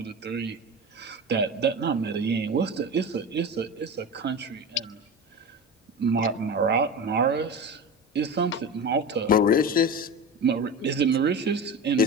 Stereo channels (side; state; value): both; normal; correlation 0.27